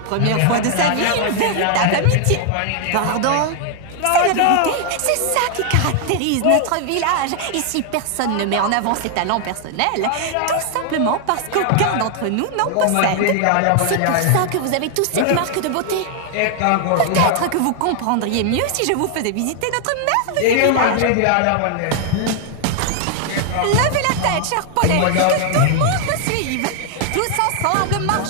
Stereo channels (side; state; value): both; different; correlation 0.00